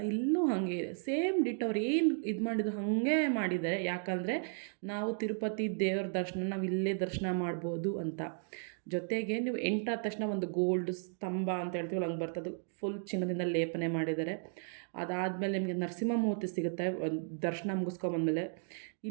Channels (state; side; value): silent; left; 55 dB below the other